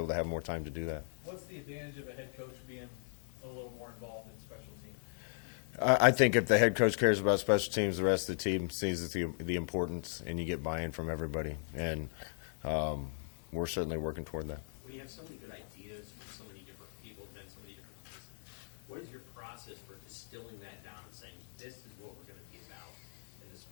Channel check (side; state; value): right; silent; digital silence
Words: to have more time to do that. What's the advantage of a head coach being a little more involved in special teams? I think if the head coach cares about special teams, the rest of the team sees the importance, and you get buy-in from everybody. And we're certainly working toward that. When you have so many good ideas from so many different people, and so many different places, what is your process for distilling that down and saying, this is what we're going to be about in the